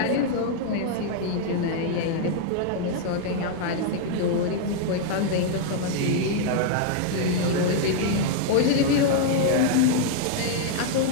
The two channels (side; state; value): both; different; correlation 0.00